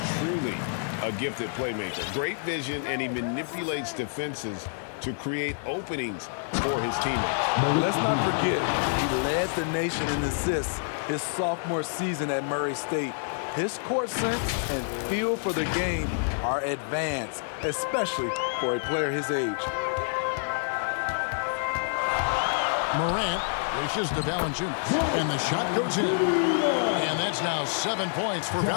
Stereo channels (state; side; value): silent; right; digital silence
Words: truly a gifted playmaker. Great vision, and he manipulates defenses to create openings for his teammates. Let's not forget, he led the nation in assists his sophomore season at Murray State. His court sense and feel for the game are advanced, especially for a player his age. Morant wishes to Valanciunas, and the shot goes in. And that's now 7 points for